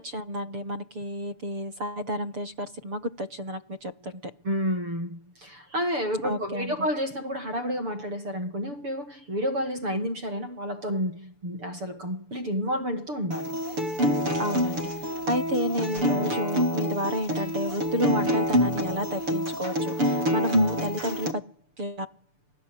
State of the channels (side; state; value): left; late; 6.9 ms